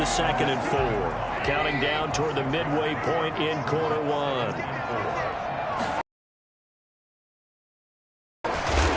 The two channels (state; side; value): identical; both; correlation 1.00